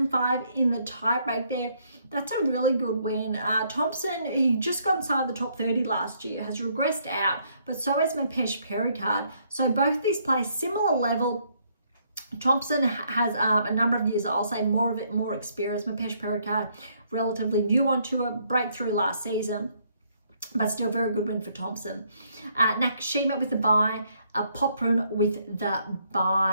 in the tiebreak there. That's a really good win. Thompson, he just got inside the top 30 last year, has regressed out, but so has Mapesh Pericard. So both these play similar level. Thompson has a number of years, I'll say more experience. Mapesh Pericard, relatively new on tour, breakthrough last season, but still very good win for Thompson. Nakashima with the bye, Poprun with the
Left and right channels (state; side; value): inverted; both; correlation -0.70